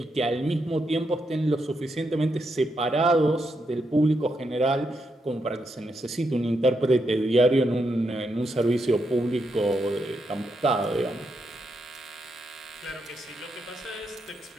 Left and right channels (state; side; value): normal; both; correlation 0.82